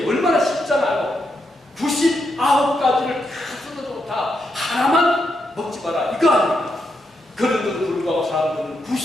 얼마나 쉽잖아요. 99가지를 다 써도 좋다. 하나만 먹지 마라. 이거 아닙니까? 그런데도 불구하고 사람들은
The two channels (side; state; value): both; normal; correlation 0.82